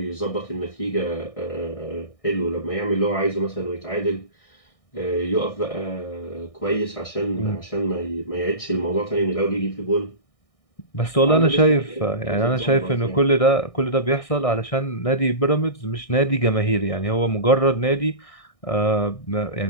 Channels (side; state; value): right; late; 1.6 ms